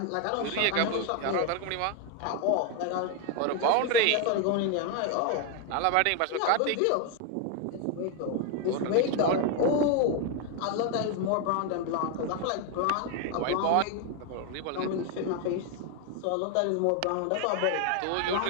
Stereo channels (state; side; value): different; both; correlation 0.01